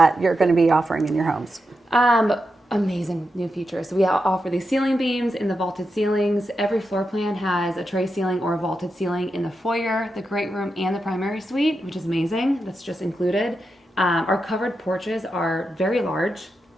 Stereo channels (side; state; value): both; normal; correlation 0.87